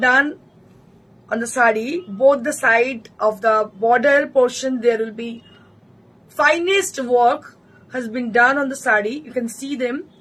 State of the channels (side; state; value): both; identical; correlation 1.00